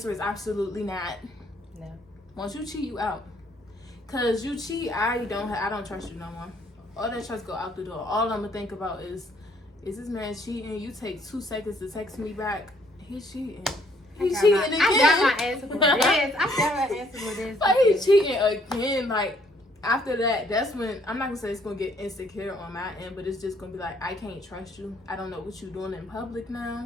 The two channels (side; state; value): both; normal; correlation 0.65